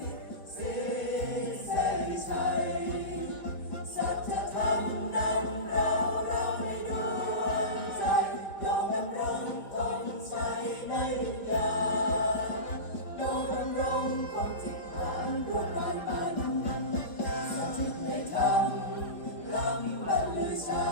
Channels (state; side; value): late; right; 4.5 ms